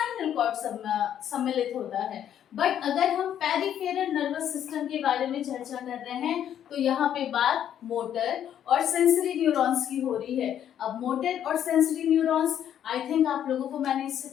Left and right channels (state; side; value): quieter; right; 10.0 dB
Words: कॉर्ड सम्मिलित होता है। बट अगर हम पेरिफेरल नर्वस सिस्टम के बारे में चर्चा कर रहे हैं तो यहाँ पे बात मोटर और सेंसरी न्यूरॉन्स की हो रही है। अब मोटर और सेंसरी न्यूरॉन्स, आई थिंक आप लोगों को मैंने इससे